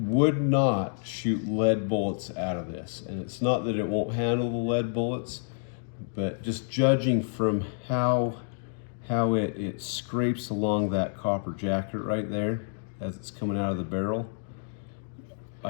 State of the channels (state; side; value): silent; right; digital silence